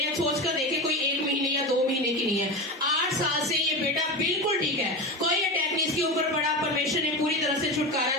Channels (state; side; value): normal; both; correlation 0.23